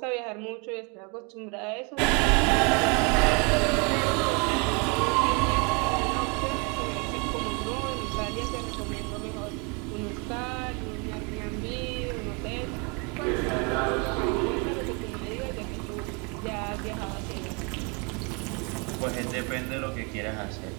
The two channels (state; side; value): quieter; left; 32.2 dB